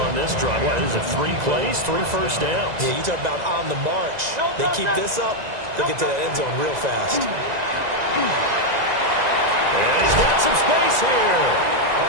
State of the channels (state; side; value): late; left; 2.0 ms